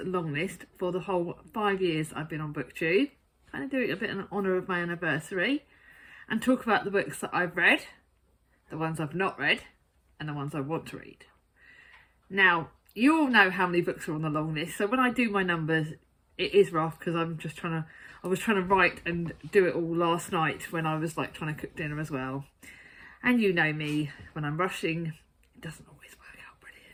long list for the whole 5 years I've been on booktube, kind of doing a bit in honour of my anniversary, and talk about the books that I've read, the ones I've not read, and the ones I want to read. Now, you all know how many books are on the long list, so when I do my numbers, it is rough because I was trying to write and do it all last night when I was like trying to cook dinner as well. And you know me, when I'm rushing, it doesn't always work out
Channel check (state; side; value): identical; both; correlation 1.00